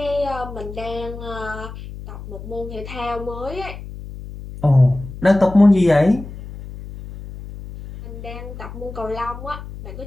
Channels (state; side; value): noise; left; hum, 12 dB below the sound